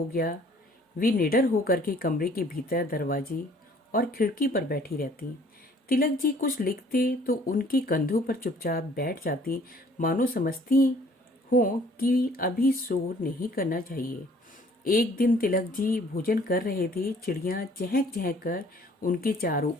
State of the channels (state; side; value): normal; both; correlation 0.57